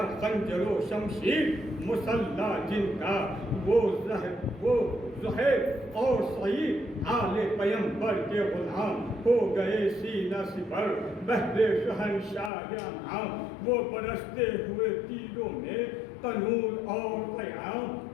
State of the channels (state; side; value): drops out; right; at 12.5 s